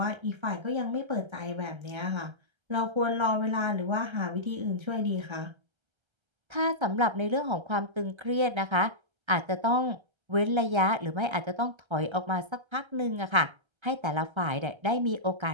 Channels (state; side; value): late; left; 1.3 ms